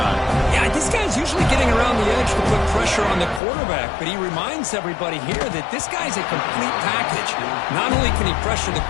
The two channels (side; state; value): right; drops out; at 3.4 s